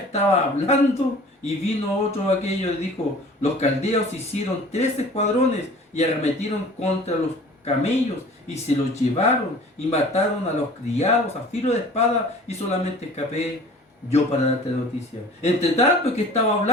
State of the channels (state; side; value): normal; both; correlation 0.45